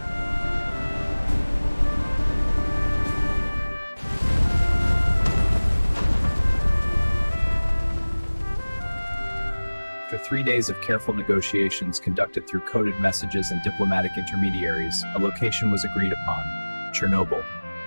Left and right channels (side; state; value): both; inverted; correlation -1.00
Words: After 3 days of careful negotiations conducted through coded messages and diplomatic intermediaries, a location was agreed upon: Chernobyl.